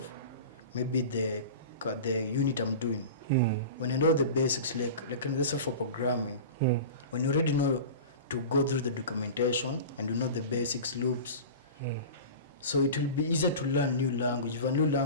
maybe the unit I'm doing. When I know the basics, like let's say for programming, when you already know to go through the documentation and you know the basics, loops, so it will be easier to learn new language. If a new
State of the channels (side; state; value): both; inverted; correlation -0.33